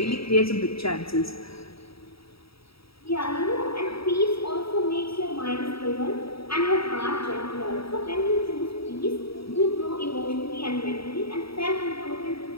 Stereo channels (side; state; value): right; late; 0.76 ms